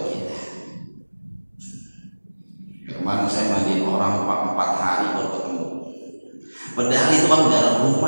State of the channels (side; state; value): both; inverted; correlation -1.00